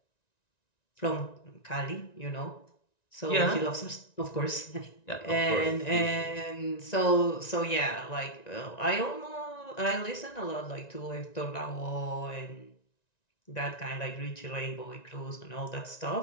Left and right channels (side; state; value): right; late; 1.9 ms